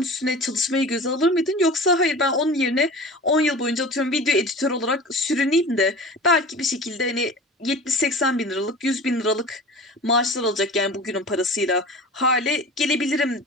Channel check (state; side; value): normal; both; correlation 0.37